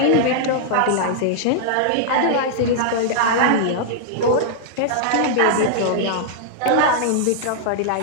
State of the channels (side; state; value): both; different; correlation -0.01